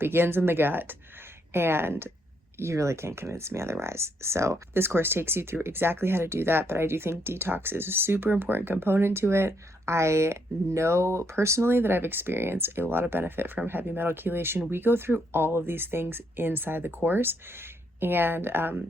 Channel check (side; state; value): both; normal; correlation 0.74